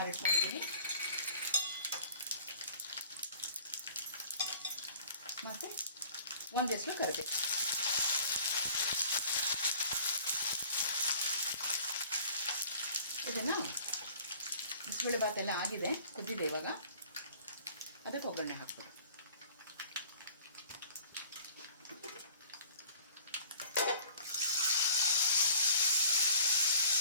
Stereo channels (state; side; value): inverted; both; correlation -0.52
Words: ಮತ್ತು ಒಂದೆಷ್ಟು ಕರಿಬೇವು. ಇದನ್ನು ಬಿಸಿಬೇಳೆ ಭಾತ್ ಎಲ್ಲ ಆಗಿದೆ, ಕುದ್ದಿದೆ. ಇವಾಗ ಅದಕ್ಕೆ ಒಗ್ಗರಣೆ ಹಾಕ್ಬೇಕು.